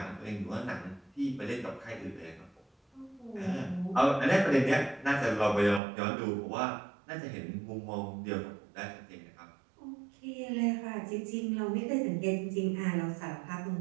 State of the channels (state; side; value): drops out; left; at 5.8 s